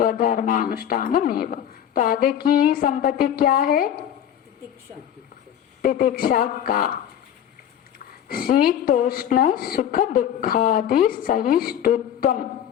तो आगे की संपत्ति क्या है? तितिक्षा का शीतोष्ण सुख दुखादि सहिष्णुत्वम।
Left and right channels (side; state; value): right; quieter; 9.9 dB